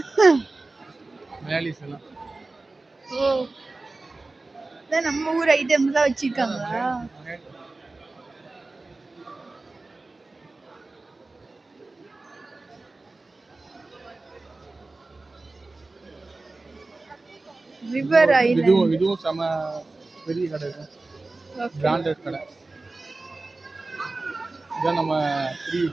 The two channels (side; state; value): left; quieter; 3.3 dB